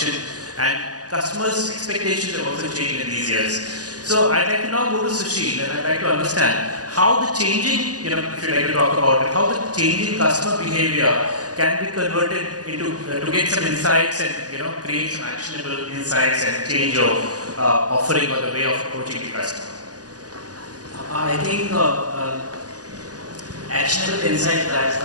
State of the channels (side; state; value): left; late; 0.68 ms